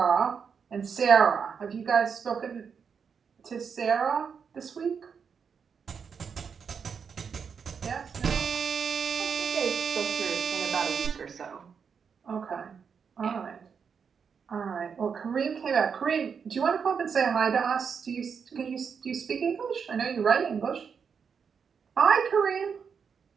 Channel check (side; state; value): left; quieter; 6.4 dB